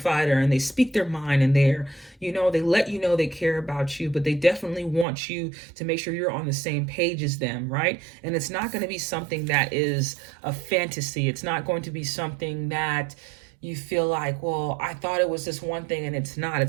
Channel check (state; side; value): drops out; left; at 5.1 s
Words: and they speak their mind and they're, they let you know they care about you, but they definitely want you to make sure you're on the same page as them, right? And it's not going to be something that is a fantasy. It's not going to be something that you feel like, well, I thought it was this one thing and it's not.